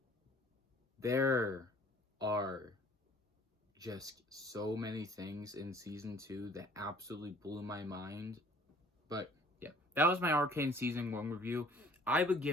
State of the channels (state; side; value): normal; both; correlation 0.54